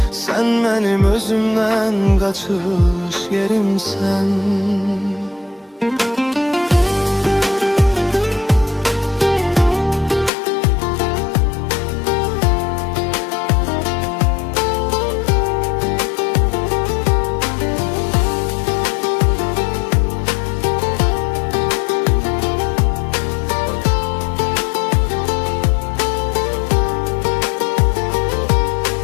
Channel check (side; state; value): right; drops out; at 10.3 s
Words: Sen benim özümden kaçış yerimsen.